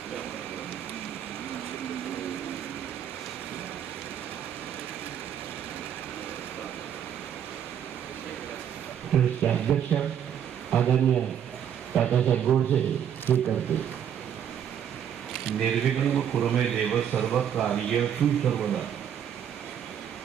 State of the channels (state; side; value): quieter; left; 9.1 dB